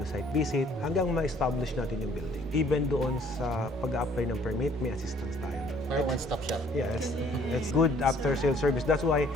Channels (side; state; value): both; normal; correlation 0.59